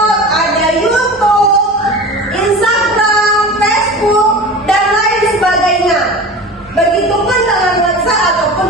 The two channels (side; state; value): both; normal; correlation 0.34